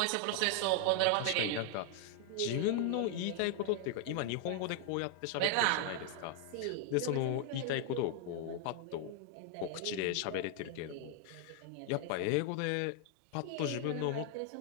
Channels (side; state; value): both; different; correlation 0.00